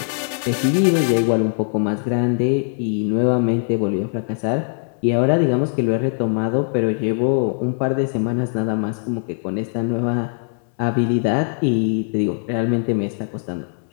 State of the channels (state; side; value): silent; right; 63 dB below the other